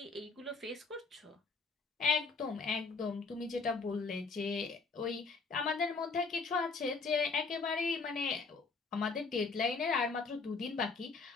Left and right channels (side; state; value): right; quieter; 4.4 dB